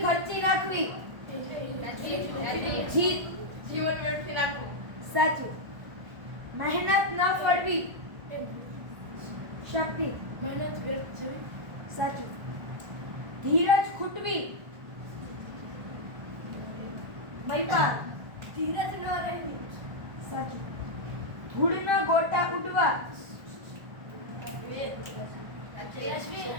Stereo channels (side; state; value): left; late; 1.4 ms